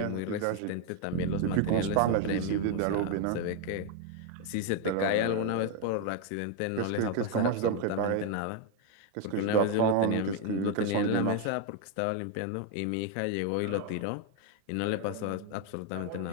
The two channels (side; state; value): both; different; correlation 0.01